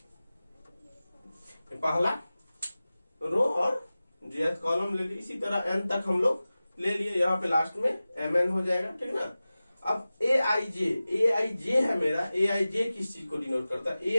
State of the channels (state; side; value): inverted; both; correlation -0.96